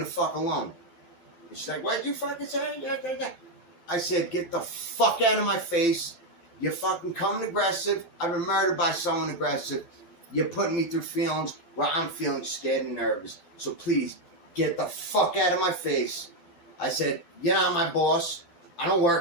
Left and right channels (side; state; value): right; late; 12 ms